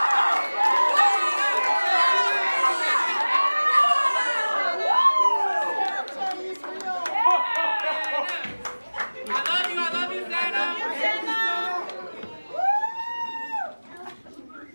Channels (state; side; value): inverted; both; correlation -1.00